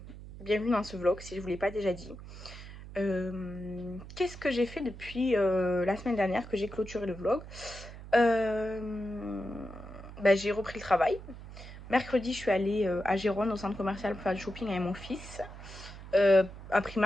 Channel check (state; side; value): noise; right; hum, 14 dB below the sound